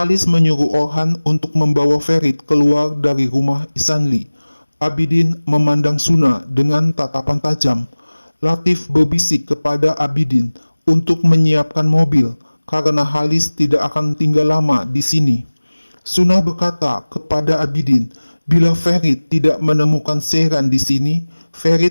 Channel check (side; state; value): both; inverted; correlation -1.00